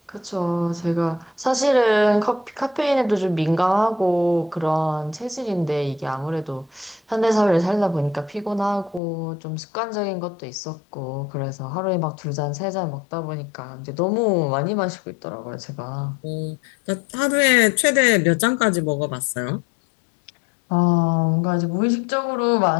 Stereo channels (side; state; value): right; drops out; at 9.0 s